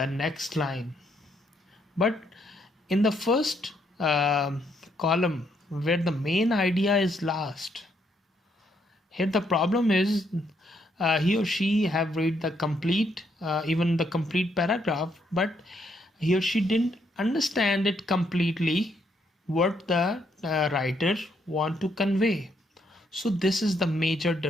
next line. But in the first column where the main idea is last, here the problem is he or she have read the complete even the complete paragraph, but he or she didn't understand it completely what the writer want to convey. So this is the major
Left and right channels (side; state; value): both; normal; correlation 0.74